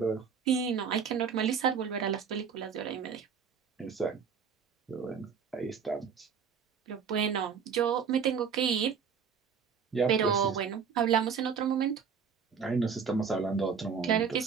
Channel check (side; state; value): left; quieter; 6.6 dB